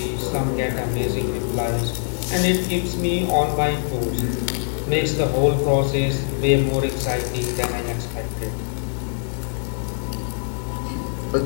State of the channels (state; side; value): silent; right; digital silence